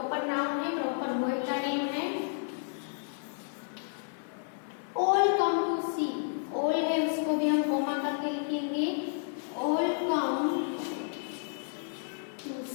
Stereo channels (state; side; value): silent; right; digital silence